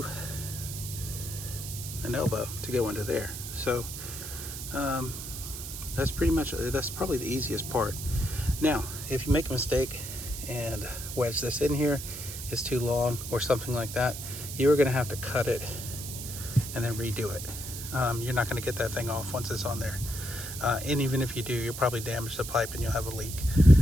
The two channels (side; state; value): right; noise; hiss, 8 dB below the sound